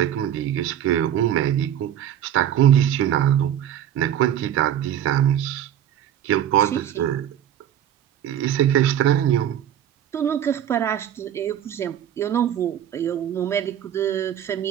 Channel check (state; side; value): quieter; left; 10.5 dB